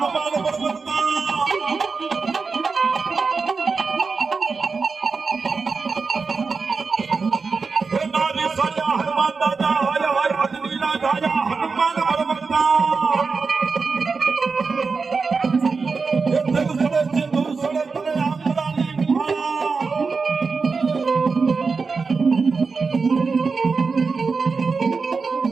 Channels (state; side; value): quieter; left; 4.7 dB